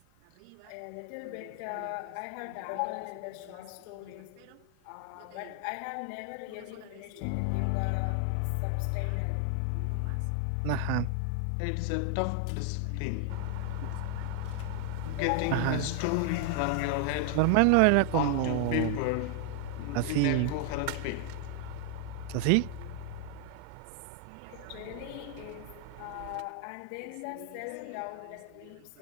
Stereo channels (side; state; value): both; different; correlation 0.00